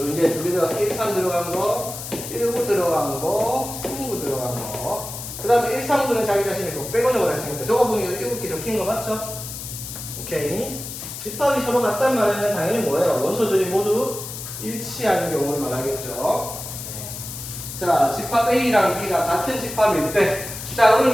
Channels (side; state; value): left; noise; hiss, 9 dB below the sound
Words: 이제 두 개가 1, 3 들어간 거, 1, 9 들어간 거, 3, 9 들어간 거. 그 다음에 1, 3, 9는 자기 자신이 그거 빼고 적어놨으니까 저거 보니까 7개 적힌 거 맞죠? 오케이. 집합이 서로 같단 말은 당연히 뭐예요? 원소들이 모두 일치하는 경우를 말하겠죠. 자, 집합 A랑 B가 같은 집합일 때, 자,